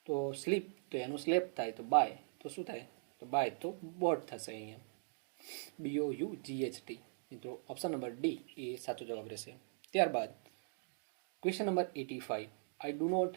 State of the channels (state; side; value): silent; left; digital silence